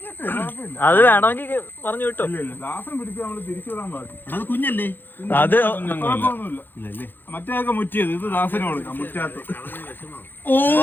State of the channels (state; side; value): late; right; 0.095 ms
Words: അത് വേണമെങ്കിൽ പറഞ്ഞു വിട്ടോ. ദാസൻ പിടിച്ച് നമ്മള് തിരിച്ചു വിടാൻ പാടില്ല. അത് കുഞ്ഞല്ലേ? അത് കുഴപ്പമൊന്നുമില്ല. മറ്റേതൊക്കെ മുറ്റിയത്, ഇത് ദാസന് കൊടുക്കാം മുറ്റാത്ത.